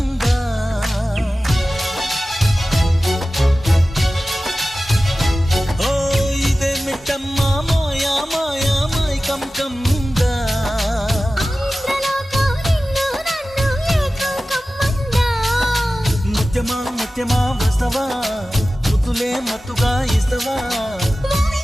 ఓ ఇదే మిట్టమ్మా మాయా మాయా my come కమ్మిందా ముత్యమా ముత్యమా వస్తవా ముతులే మత్తుగా ఇస్తవా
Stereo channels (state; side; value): normal; both; correlation 0.96